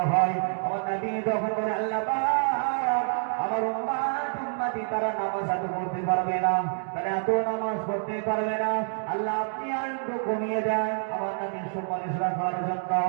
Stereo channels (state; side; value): silent; left; digital silence